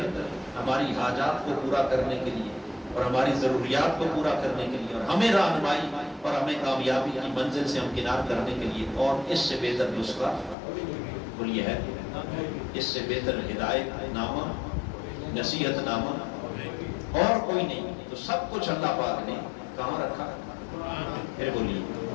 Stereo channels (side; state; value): right; drops out; at 10.6 s